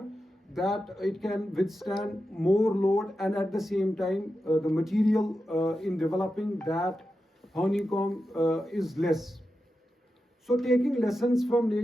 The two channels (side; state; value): both; normal; correlation 0.90